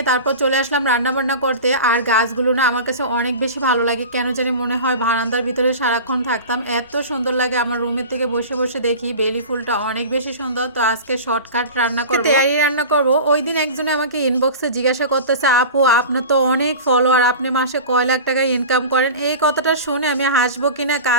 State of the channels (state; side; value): inverted; both; correlation -0.34